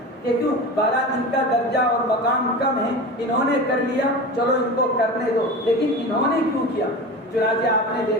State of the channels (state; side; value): normal; both; correlation 0.30